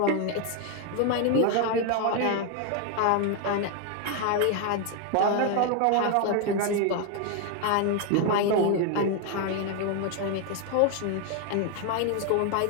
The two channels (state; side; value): different; both; correlation 0.01